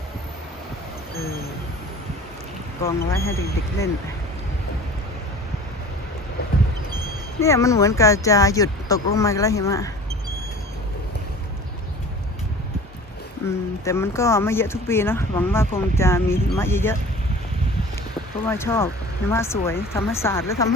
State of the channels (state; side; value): normal; both; correlation 0.42